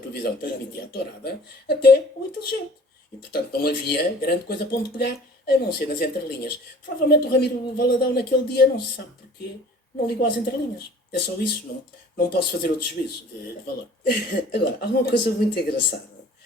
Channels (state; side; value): normal; both; correlation 0.49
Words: que transmitia a tourada, até o inteligente. E portanto não havia grande coisa para onde pegar, a não ser nas entrelinhas. Provavelmente o Ramiro Valadão naquele dia, não se sabe porquê, não ligou às entrelinhas. É só isso, não posso fazer outro juízo de valor. Agora, há uma coisa muito engraçada.